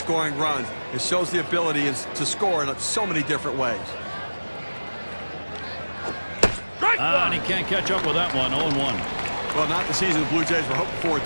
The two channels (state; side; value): inverted; both; correlation -1.00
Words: runs. It shows the ability to score in so many different ways. And he can't catch up with that one. 0-1. Well, not the season the Blue Jays were hoping for